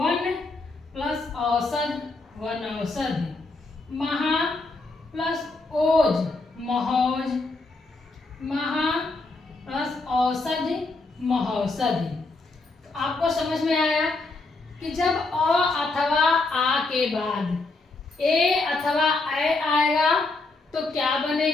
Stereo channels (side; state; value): right; quieter; 3.3 dB